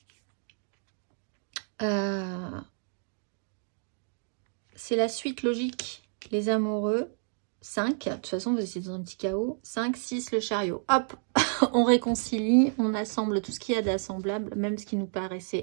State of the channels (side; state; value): left; silent; digital silence